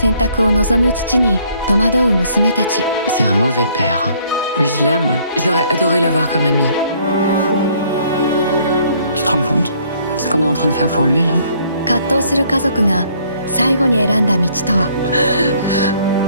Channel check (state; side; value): inverted; both; correlation -0.63